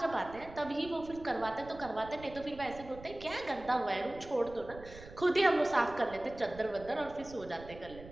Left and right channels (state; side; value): noise; right; rumble, 17 dB below the sound